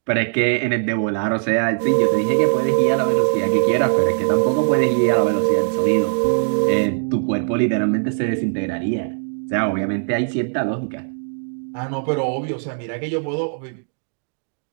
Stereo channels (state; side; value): silent; left; digital silence